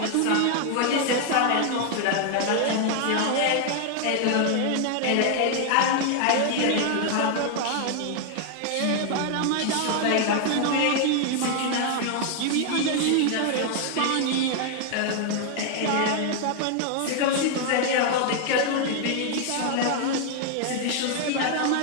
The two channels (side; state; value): both; different; correlation 0.00